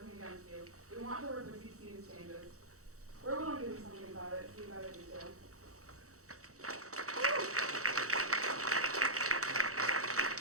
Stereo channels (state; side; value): late; left; 0.65 ms